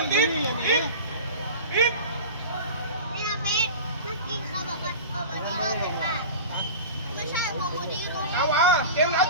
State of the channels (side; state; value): both; inverted; correlation -0.33